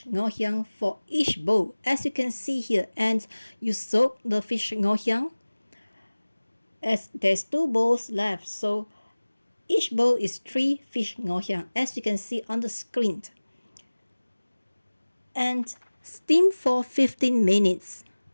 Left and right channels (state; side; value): inverted; both; correlation -1.00